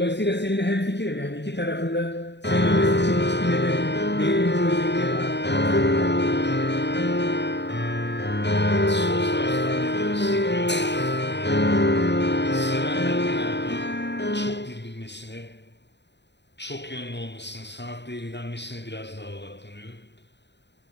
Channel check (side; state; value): right; late; 0.50 ms